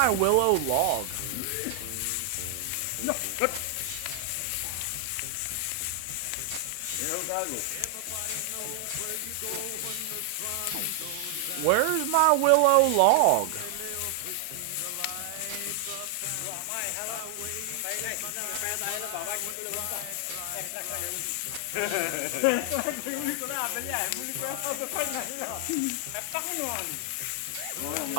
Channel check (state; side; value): different; both; correlation 0.00